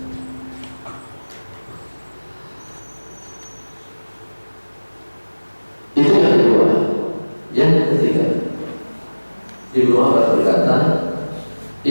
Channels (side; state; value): both; inverted; correlation -1.00